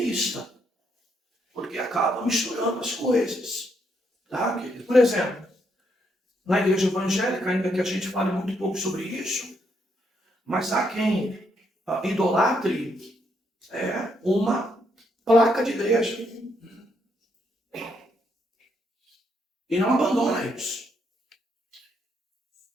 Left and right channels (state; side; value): normal; both; correlation 0.76